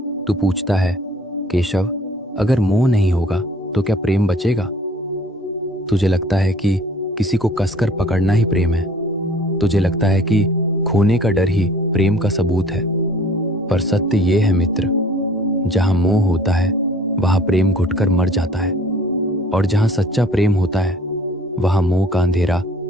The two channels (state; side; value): normal; both; correlation 0.52